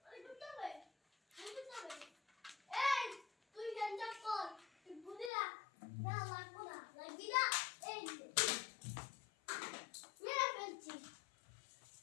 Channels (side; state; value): right; drops out; at 5.3 s